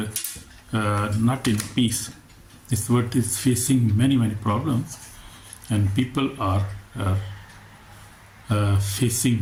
not in peace. This world is facing many problems, and people are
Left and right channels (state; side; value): identical; both; correlation 1.00